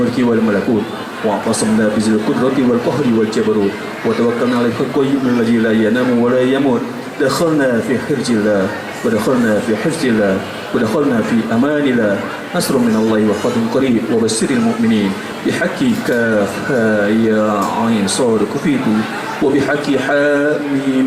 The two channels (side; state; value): both; identical; correlation 1.00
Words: wal malakut wa qasamna bi qudrati wal qahri wal jabarut wa tawakkalna 'ala al-qayyum alladhi la yanamu wa la yamut. Dakhalna fi hirjillah wa dakhalna fi hifzillah wa dakhalna fi amanillah. Nasrun min Allah wa fathun qarib wa basyiril mu'minin bihaqqi kaf ya 'ain sad kufitu wa bihaqqi ha